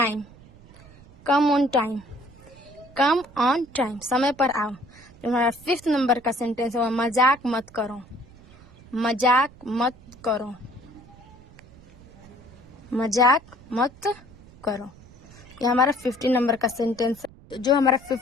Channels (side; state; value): right; noise; rumble, 23 dB below the sound